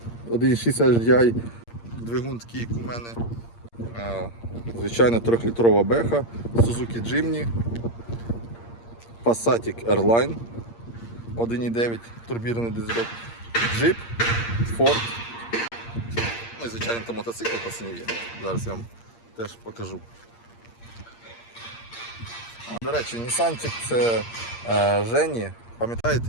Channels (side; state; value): right; late; 8.6 ms